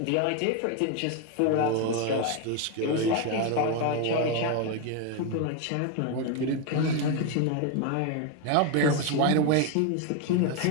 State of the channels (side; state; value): both; different; correlation 0.02